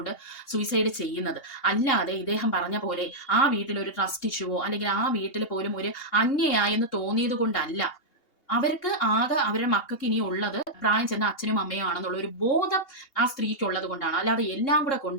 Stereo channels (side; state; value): right; late; 2.8 ms